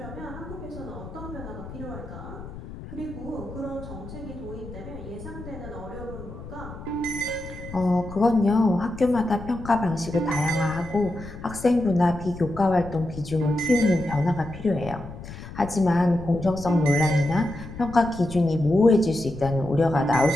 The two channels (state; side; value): noise; left; rumble, 13 dB below the sound